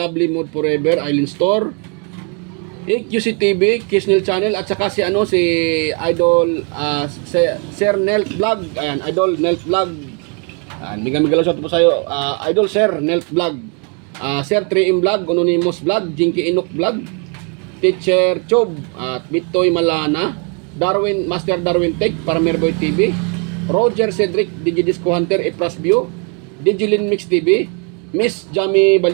Mood Forever, Island Store, QC TV, Kisnel Channel, at saka si Idol, Sir Nelt Vlog, ayan, Idol Nelt Vlog, mega shoutout po sa iyo, Idol Sir Nelt Vlog, Sir 3M Vlog, Anonymous Vlog, Jinky Inok Vlog, Teacher Chob, at Bitoy Malana, Master Darwin Tech, Paramerboy TV, Roger Cedric, Digidisco Hunter, Epras View, Digilin Mix TV, Miss Jamie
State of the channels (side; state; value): left; quieter; 36.0 dB